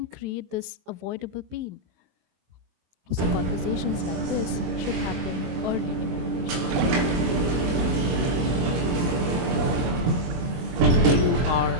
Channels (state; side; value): late; left; 23 ms